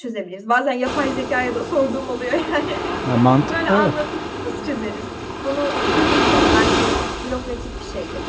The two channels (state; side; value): identical; both; correlation 1.00